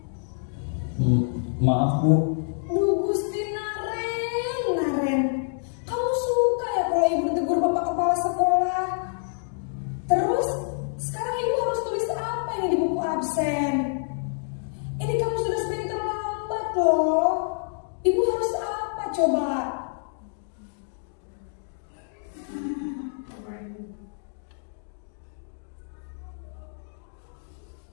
Maaf, Bu. Duh, Gusti Naren, kamu suka ya kalau ibu ditegur bapak kepala sekolah? Terus, sekarang ibu harus tulis apa ini di buku absen? Ini kamu sudah sering terlambat loh. Ibu harus apa coba?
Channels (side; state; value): right; silent; digital silence